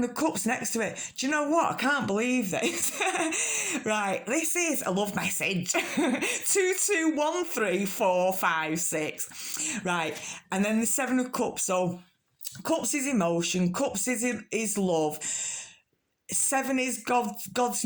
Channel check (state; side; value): identical; both; correlation 1.00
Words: of Cups next to it. Do you know what? I can't believe this. Right, this is a love message. 221345 6. Right, and then the Seven of Cups. So Cups is emotion. Cups is love. 7 is God's